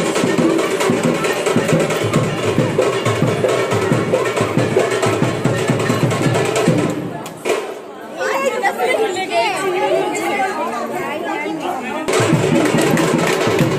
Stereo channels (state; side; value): identical; both; correlation 1.00